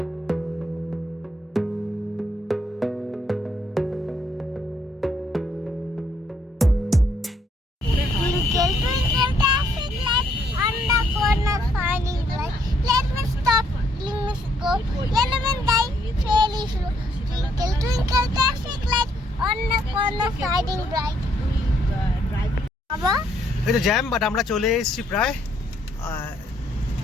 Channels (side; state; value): both; normal; correlation 0.70